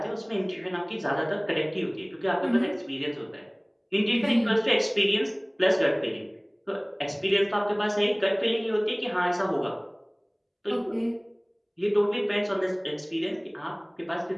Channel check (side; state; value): both; identical; correlation 1.00